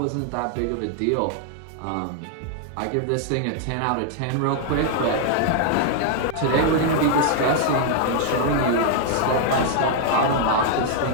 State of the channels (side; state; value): both; different; correlation 0.00